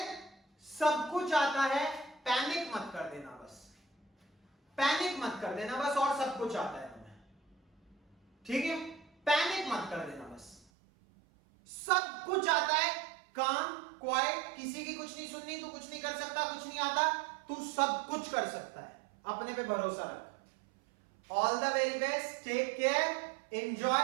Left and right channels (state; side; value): drops out; left; at 10.7 s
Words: सब कुछ आता है, पैनिक मत कर देना बस, पैनिक मत कर देना बस, और सब कुछ आता है तुम्हें, ठीक है, पैनिक मत कर देना बस, सब कुछ आता है, काम क्वाइट, किसी की कुछ नहीं सुननी, तू कुछ नहीं कर सकता, कुछ नहीं आता, तू सब कुछ कर सकता है, अपने पे भरोसा रख। All the very best, take care,